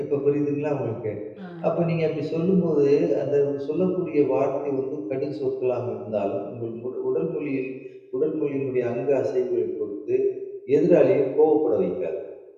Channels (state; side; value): identical; both; correlation 1.00